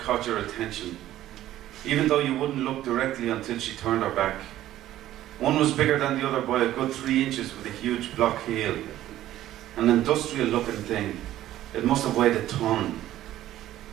your attention, even though you wouldn't look directly until she turned her back. One was bigger than the other by a good 3 inches with a huge block heel. An industrial looking thing. It must have weighed a ton.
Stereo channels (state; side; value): quieter; left; 13.6 dB